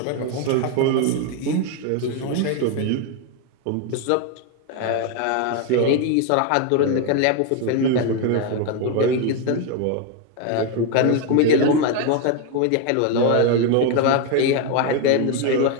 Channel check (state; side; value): different; both; correlation 0.01